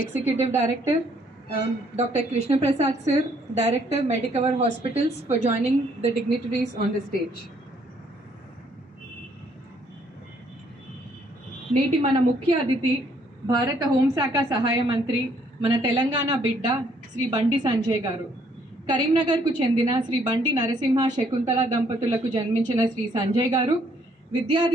Director, Dr. Krishna Prasad sir, Director, Medicover Hospitals, for joining the dignitaries on the stage. నేటి మన ముఖ్య అతిథి భారత హోంశాఖ సహాయ మంత్రి మన తెలంగాణ బిడ్డ శ్రీ బండి సంజయ్ గారు. కరీంనగర్కు చెందిన శ్రీ బండి నరసింహ శకుంతల దంపతులకు జన్మించిన శ్రీ సంజయ్ గారు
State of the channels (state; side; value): normal; both; correlation 0.66